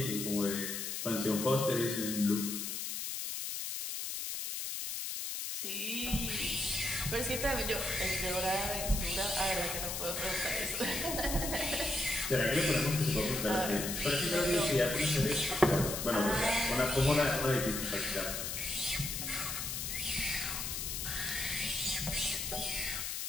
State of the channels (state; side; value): noise; left; hiss, 3 dB below the sound